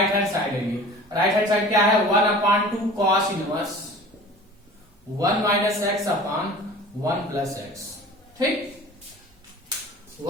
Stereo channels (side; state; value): both; normal; correlation 0.42